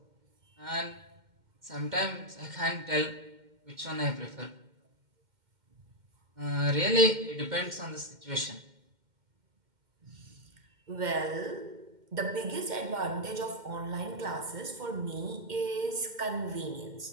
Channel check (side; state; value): left; late; 2.1 ms